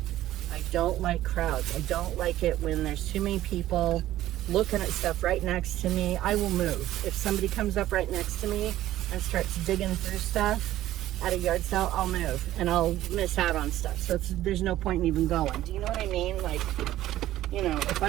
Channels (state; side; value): quieter; left; 14.1 dB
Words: I don't like crowds. I don't like it when there's too many people looking at stuff right next to me. I will move. If somebody comes up right next to me and starts digging through stuff at a yard sale, I'll move and I'll miss out on stuff. So there's no point in even going. Do you know what I mean? Like, you know, if